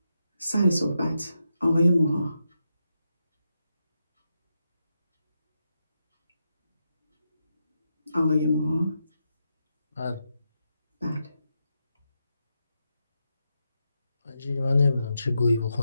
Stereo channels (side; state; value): both; inverted; correlation -0.86